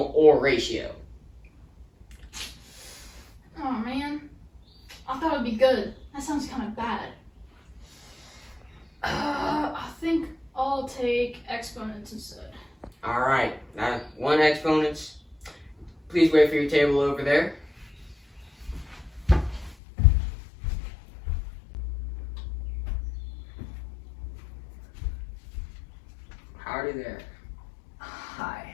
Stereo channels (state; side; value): drops out; right; at 19.8 s